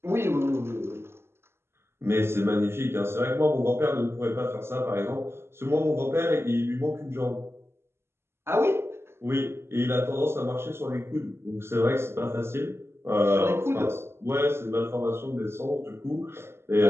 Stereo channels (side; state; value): left; late; 0.12 ms